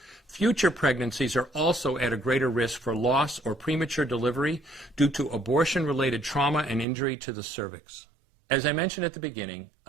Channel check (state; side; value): drops out; left; at 6.9 s